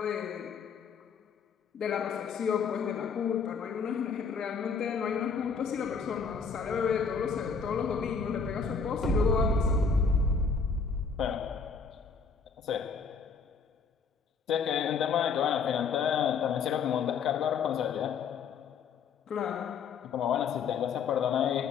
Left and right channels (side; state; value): right; quieter; 5.6 dB